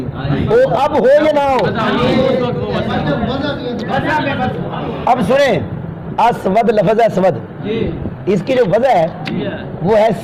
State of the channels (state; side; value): identical; both; correlation 1.00